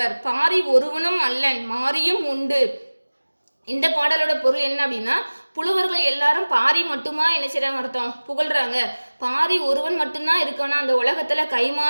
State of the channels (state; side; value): inverted; both; correlation -1.00